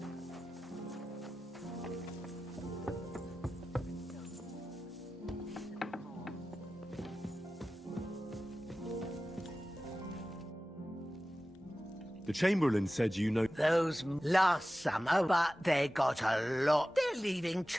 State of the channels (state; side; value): normal; both; correlation 0.95